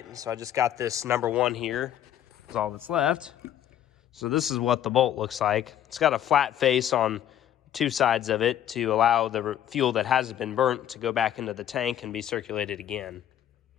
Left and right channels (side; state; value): right; quieter; 10.9 dB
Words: so I just got this number 1 here. That's all that's left. So this is what the bolt looks like. It's got a flat face on 2 sides of it to allow the fuel that hasn't been burnt to go back into the tank and be circulated again.